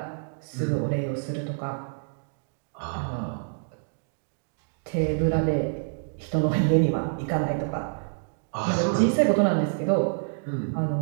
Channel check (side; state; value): left; silent; digital silence